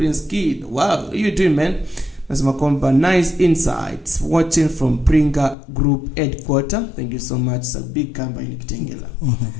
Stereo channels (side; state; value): right; drops out; at 5.6 s